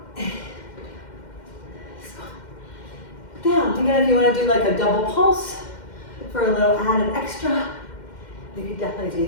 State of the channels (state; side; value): late; right; 2.1 ms